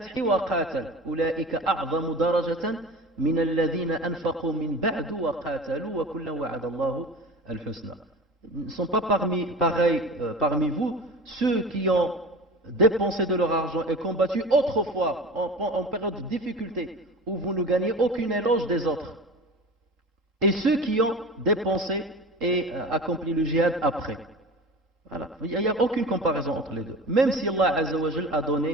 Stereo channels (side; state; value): both; normal; correlation 0.34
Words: وقاتل أولئك أعظم درجة من الذين أنفقوا من بعد وقاتلوا وكلا وعد الله الحسنى. Ils ne sont pas parmi vous ceux qui ont dépensé de leur argent et combattu autrefois en période de difficulté où vous ne gagnez aucune éloge des autres, et ceux qui ont dépensé et accompli le djihad après. Voilà. Il n'y a aucune comparaison entre les deux. Même si Allah Azza wa Jal a